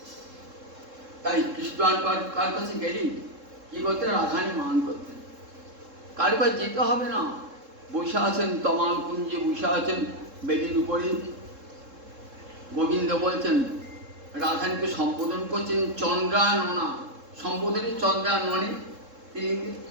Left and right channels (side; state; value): left; late; 3.7 ms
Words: তাই কৃষ্ণ কার কাছে গেলি কি করতেন? রাধারানী মান করতেন। কার কাছে যেতে হবে না, বসে আছেন তমাল কুঞ্জে, বসে আছেন বেদির উপরে। গোবিন্দ বলছেন, রাধারানীকে সম্বোধন করছেন চন্দ্রাননা, সম্বোধনে চন্দ্রাননে। তিনি